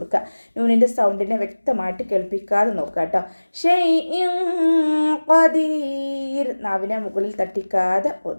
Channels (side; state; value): both; inverted; correlation -1.00